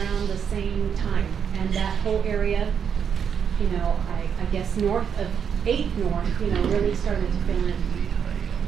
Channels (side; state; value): left; quieter; 7.4 dB